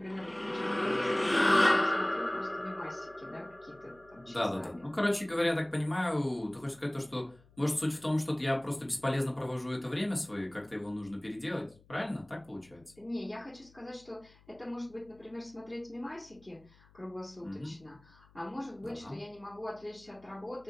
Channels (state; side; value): noise; left; hum, 27 dB below the sound